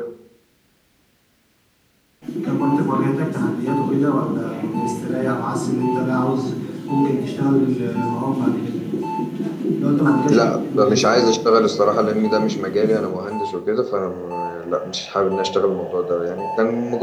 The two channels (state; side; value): identical; both; correlation 1.00